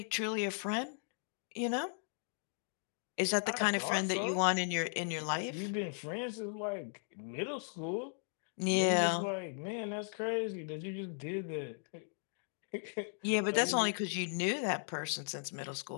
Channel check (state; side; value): silent; right; digital silence